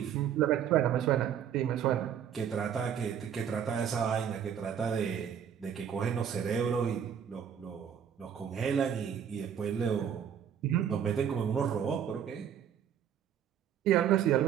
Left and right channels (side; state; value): left; quieter; 8.6 dB